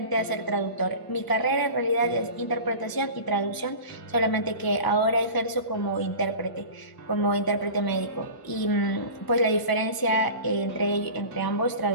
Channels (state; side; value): late; right; 1.0 ms